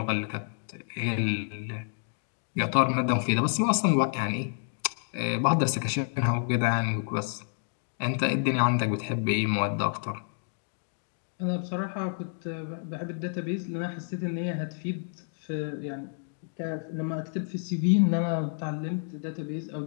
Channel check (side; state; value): right; silent; digital silence